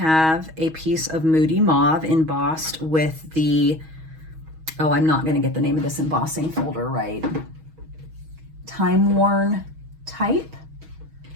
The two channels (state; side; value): late; left; 6.3 ms